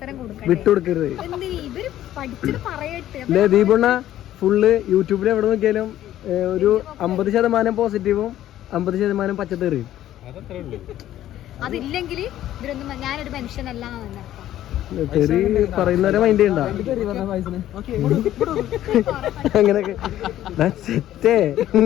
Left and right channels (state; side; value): quieter; right; 12.8 dB